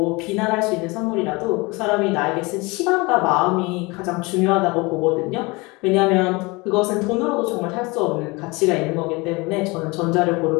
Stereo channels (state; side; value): quieter; right; 25.3 dB